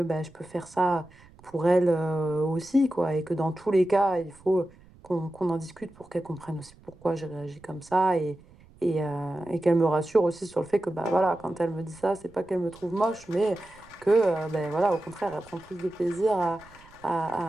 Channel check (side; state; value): right; noise; rumble, 25 dB below the sound